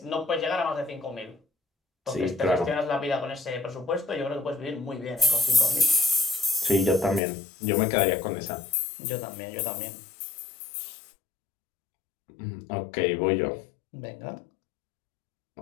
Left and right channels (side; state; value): right; drops out; at 7.2 s